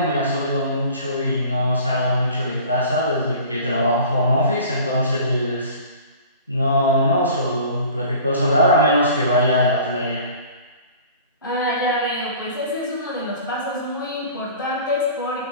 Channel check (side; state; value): both; inverted; correlation -0.44